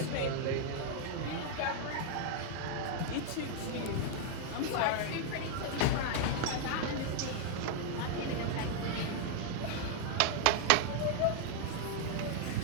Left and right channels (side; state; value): both; different; correlation 0.00